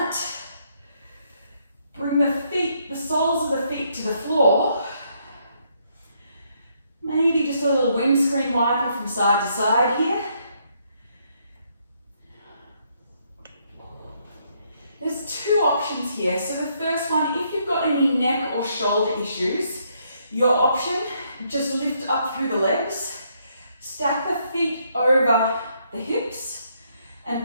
Bring the feet, the soles of the feet to the floor. Maybe just a little windscreen wiper from side to side here. There's 2 options here. So the first one, if you've got any neck or shoulder issues, your option, just lift up through the legs, stack the feet over the hips,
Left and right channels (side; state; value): both; inverted; correlation -0.73